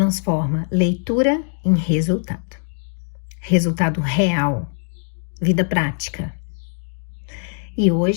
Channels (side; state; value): right; silent; digital silence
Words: leitura em resultado. Resultado real, vida prática. E